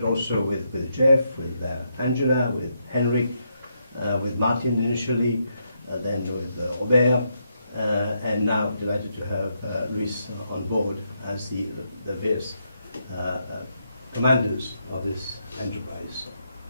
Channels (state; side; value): inverted; both; correlation -0.80